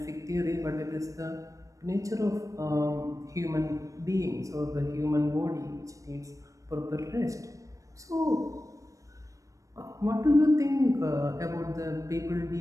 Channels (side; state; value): left; late; 0.16 ms